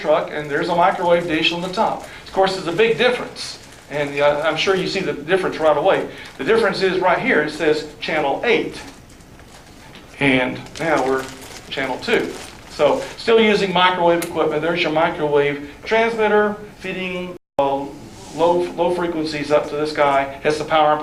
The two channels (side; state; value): both; identical; correlation 1.00